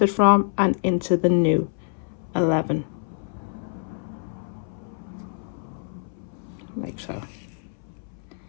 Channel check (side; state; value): right; silent; 61 dB below the other